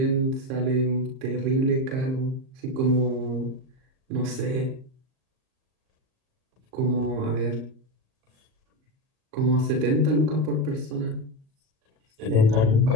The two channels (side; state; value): left; late; 38 ms